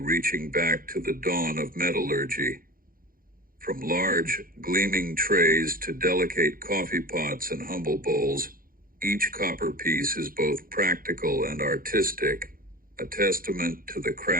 back to the dawn of metallurgy. From large, gleaming trays to delicate coffee pots and humble bowls, each copper piece is both practical and artistic, a testament to the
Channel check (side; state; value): left; late; 0.41 ms